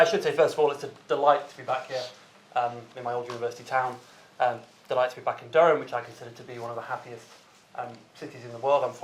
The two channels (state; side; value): identical; both; correlation 1.00